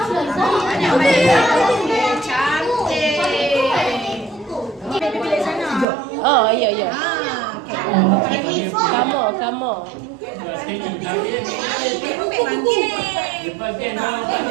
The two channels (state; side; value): drops out; left; at 5.9 s